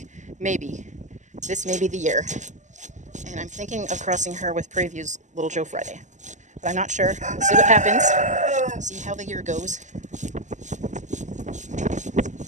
this may be the year. And I'm thinking of crossing her with Prairie View's Little Joe Friday. But I'm not sure. We'll see what happens. See how the year goes.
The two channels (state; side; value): late; left; 0.35 ms